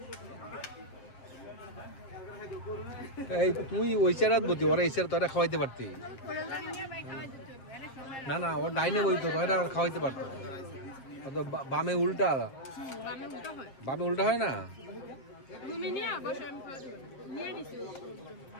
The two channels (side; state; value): right; late; 7.5 ms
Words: এই তুই ওই চেরাত বতি, ওরা এই চেরা তো এটা খাওয়াইতে পারতি না। না ওর ডাইনে বইতো তো, এটা খাওয়াইতে পারতো। বামে উল্টা, বামে উল্টা হয় না।